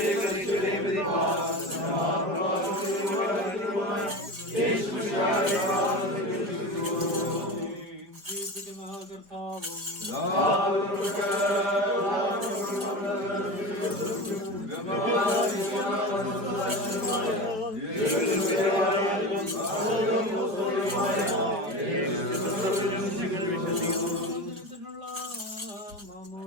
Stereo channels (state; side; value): late; left; 5.0 ms